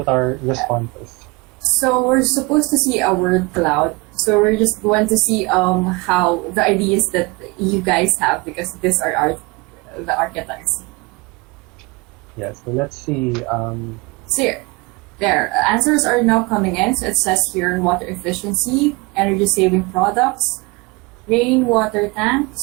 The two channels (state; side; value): quieter; left; 25.8 dB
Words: our responses? So we're supposed to see a word cloud. So we're just going to see how the ideas that you guys have because these are the architects. Yes, so let's see. So here, there, answers are now coming in. So it says here water efficiency, energy saving products, rainwater